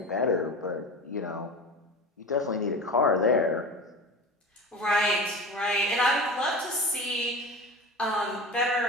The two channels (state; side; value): normal; both; correlation 0.31